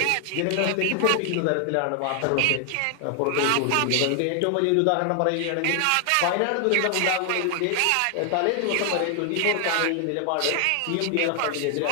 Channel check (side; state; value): both; different; correlation 0.00